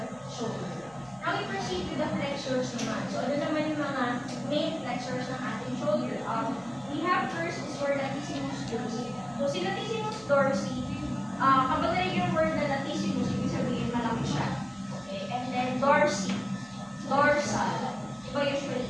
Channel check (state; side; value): noise; right; hum, 26 dB below the sound